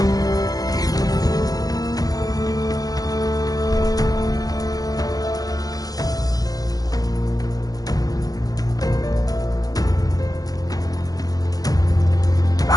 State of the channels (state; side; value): late; right; 0.18 ms